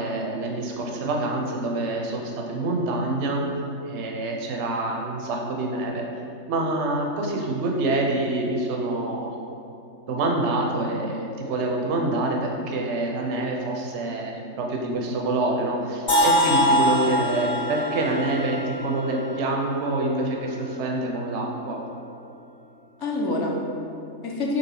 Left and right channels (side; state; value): left; late; 3.3 ms